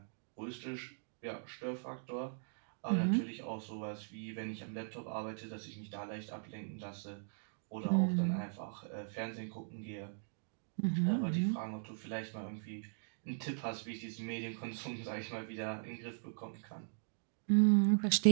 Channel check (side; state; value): left; silent; digital silence